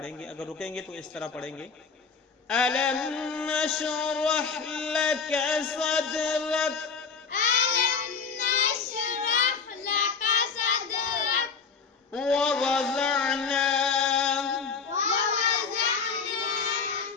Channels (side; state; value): right; quieter; 5.5 dB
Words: گے، اگر رکیں گے تو اس طرح پڑھیں گے۔ ألم نشرح لك صدرك ألم نشرح لك صدرك ووضعنا